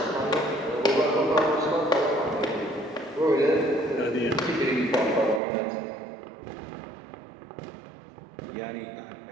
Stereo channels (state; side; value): drops out; left; at 5.4 s